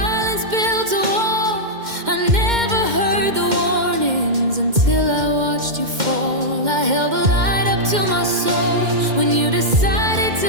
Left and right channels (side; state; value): left; late; 2.1 ms